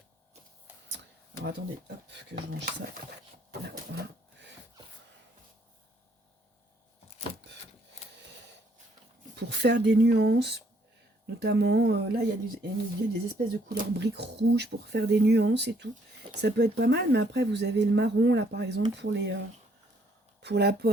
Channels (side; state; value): both; normal; correlation 0.67